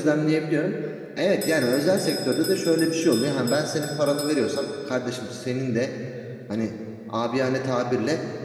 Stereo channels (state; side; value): identical; both; correlation 1.00